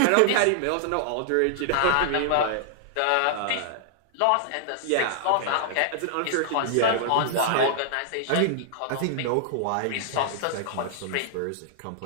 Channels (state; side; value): different; both; correlation -0.01